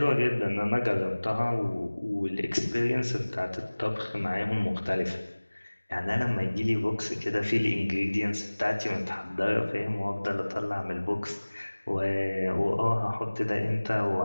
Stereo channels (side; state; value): both; inverted; correlation -1.00